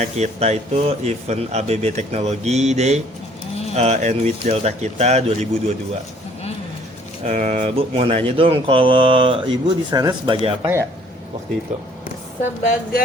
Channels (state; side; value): normal; both; correlation 0.58